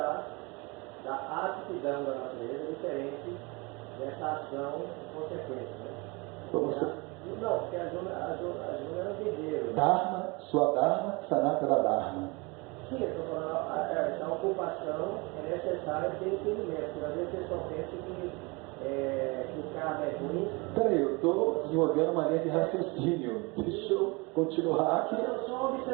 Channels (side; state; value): left; quieter; 27.1 dB